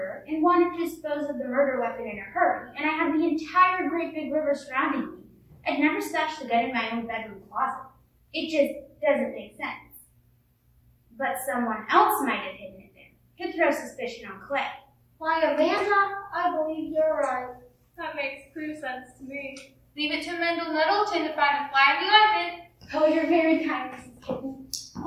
and wanted to dispose of the murder weapon in a hurry, and I had the entire great big river surrounding me, I'd never stash the gun in my own bedroom closet. It just doesn't make sense. But someone else might have hidden it there to throw suspicion on Clay. Why, Amanda, I believe you're right. That makes clear sense to me. Leave it to Mendel Nettleton to find a fly in the ointment. Oh, you're very kind, Mrs. Kitten.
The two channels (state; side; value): identical; both; correlation 1.00